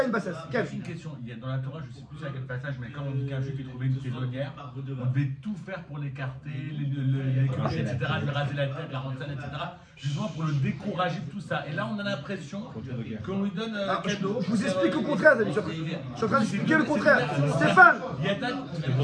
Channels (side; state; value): both; identical; correlation 1.00